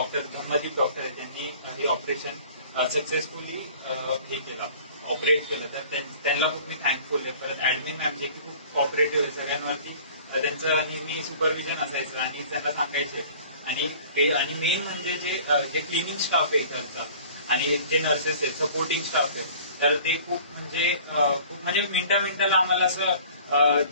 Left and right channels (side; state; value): both; inverted; correlation -0.48